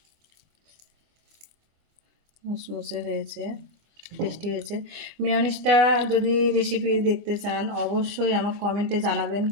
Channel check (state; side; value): late; left; 24 ms